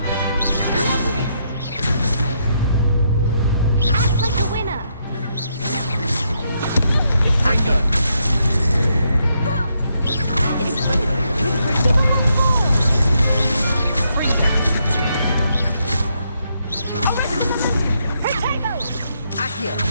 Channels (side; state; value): both; inverted; correlation -0.77